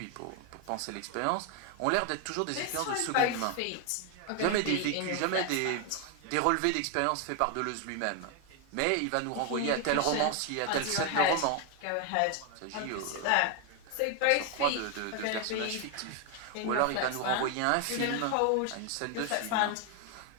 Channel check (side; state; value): both; different; correlation 0.01